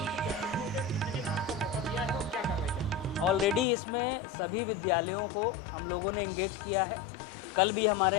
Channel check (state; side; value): drops out; right; at 3.7 s